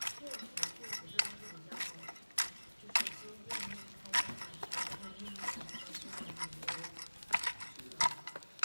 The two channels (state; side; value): inverted; both; correlation -1.00